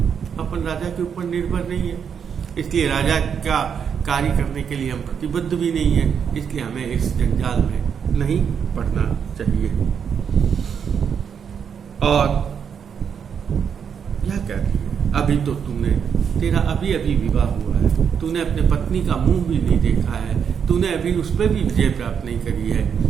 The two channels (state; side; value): quieter; left; 7.3 dB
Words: अपन राजा के ऊपर निर्भर नहीं है, इसलिए राजा का कार्य करने के लिए हम प्रतिबद्ध भी नहीं है, इसलिए हमें इस जंजाल में नहीं पड़ना चाहिए। और क्या कहती है, अभी तो तेरा अभी अभी विवाह हुआ है, तूने अपने पत्नी का मुंह भी नहीं देखा है, तूने अभी उस पर भी विजय प्राप्त नहीं करी है,